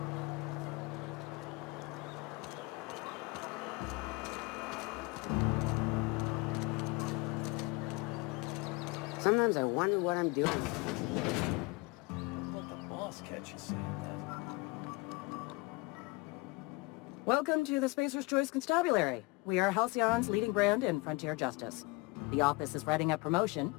Sometimes I wonder what I'm doing. Let the boss catch you saying that. Welcome to the Spacer's Choice Constabulary. We are Halcyon's leading brand in frontier justice. The office is writing a promotion.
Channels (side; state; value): right; quieter; 24.7 dB